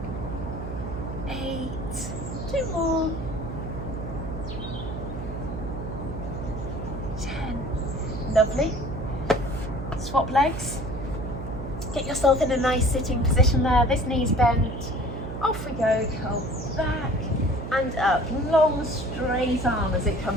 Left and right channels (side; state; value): right; noise; hum, 7 dB below the sound